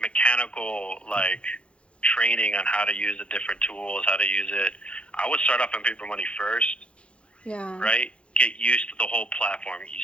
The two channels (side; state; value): right; late; 0.059 ms